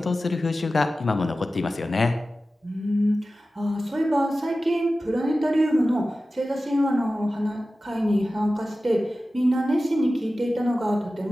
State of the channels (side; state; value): both; normal; correlation 0.95